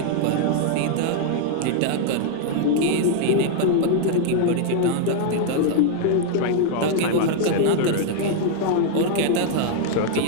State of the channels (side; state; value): both; different; correlation -0.01